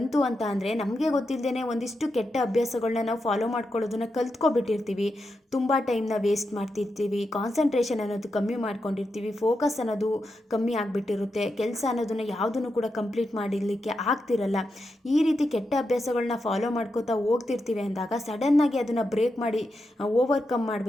ಅಂತ ಅಂದರೆ ನಮಗೆ ಗೊತ್ತಿಲ್ಲದೇ ಒಂದಿಷ್ಟು ಕೆಟ್ಟ ಅಭ್ಯಾಸಗಳನ್ನ ನಾವು ಫಾಲೋ ಮಾಡ್ಕೊಳ್ಳೋದನ್ನ ಕಲ್ತ್ಕೊಬಿಟ್ಟಿರ್ತೀವಿ. ತುಂಬ ಟೈಮ್ನ ವೇಸ್ಟ್ ಮಾಡ್ತಿರ್ತೀವಿ, ಕಾನ್ಸಂಟ್ರೇಷನ್ ಅನ್ನೋದು ಕಮ್ಮಿ ಮಾಡ್ಕೊಂಡಿರ್ತೀವಿ, ಫೋಕಸ್ ಅನ್ನೋದು ಕಮ್ಮಿ ಆಗಿಬಿಟ್ಟಿರುತ್ತೆ, ಕೆಲಸ ಅನ್ನೋದನ್ನು ಯಾವುದನ್ನು ಕೂಡ ಕಂಪ್ಲೀಟ್ ಮಾಡಲಿಕ್ಕೆ ಆಗ್ತಿರಲ್ಲ. ಈ ರೀತಿ ಕೆಟ್ಟ ಅಭ್ಯಾಸಗಳನ್ನ ಫಾಲೋ ಮಾಡ್ಕೋತಾ ಹೋಗ್ತಿರ್ತೀವಿ ಅಂದಾಗ ಸಡನ್ನಾಗಿ ಅದನ್ನು ಬ್ರೇಕ್ ಮಾಡಿ ಓವರ್ಕಮ್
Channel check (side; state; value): both; normal; correlation 0.86